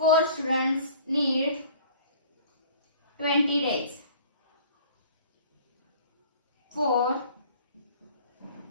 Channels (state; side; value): inverted; both; correlation -0.48